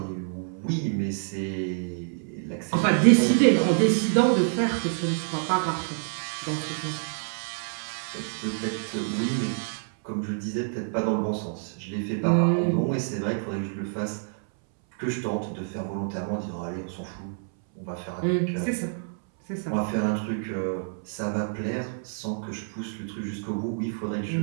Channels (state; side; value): silent; left; 60 dB below the other